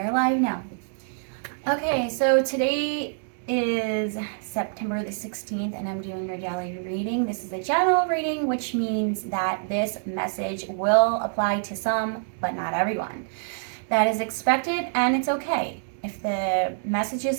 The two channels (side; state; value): left; silent; digital silence